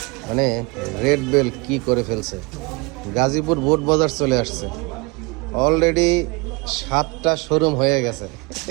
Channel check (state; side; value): quieter; left; 27.8 dB